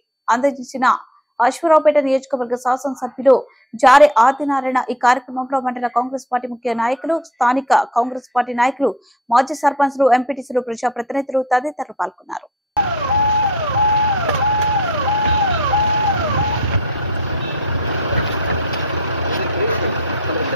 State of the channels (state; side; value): normal; both; correlation 0.49